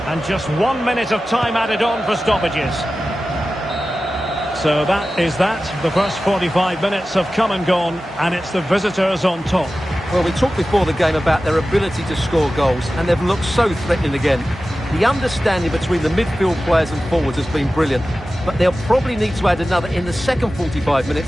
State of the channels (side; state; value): both; normal; correlation 0.95